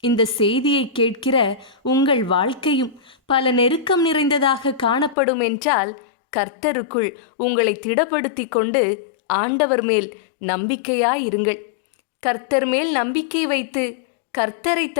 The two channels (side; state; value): right; drops out; at 5.2 s